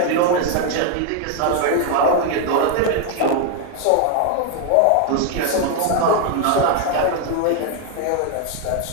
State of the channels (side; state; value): both; different; correlation 0.01